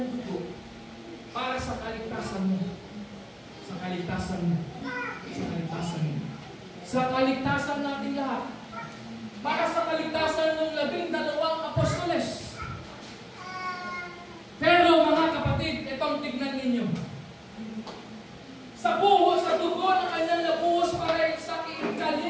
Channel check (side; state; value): both; identical; correlation 1.00